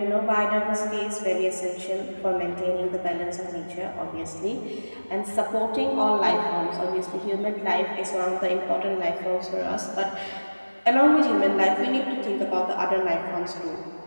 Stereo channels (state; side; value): inverted; both; correlation -1.00